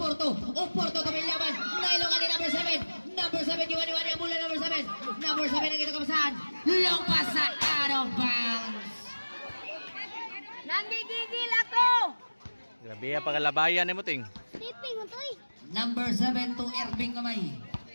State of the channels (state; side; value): inverted; both; correlation -1.00